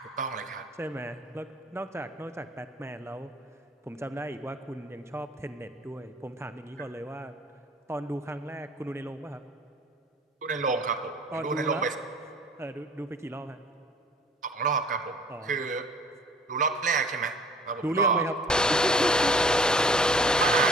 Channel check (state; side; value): normal; both; correlation 0.50